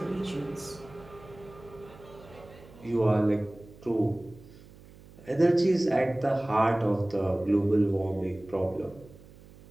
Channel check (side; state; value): right; noise; hum, 21 dB below the sound